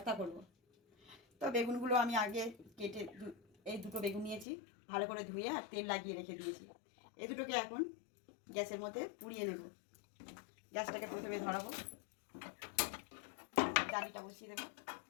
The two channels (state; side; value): drops out; right; at 4.5 s